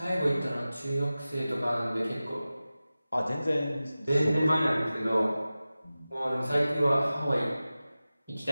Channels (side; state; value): both; inverted; correlation -0.96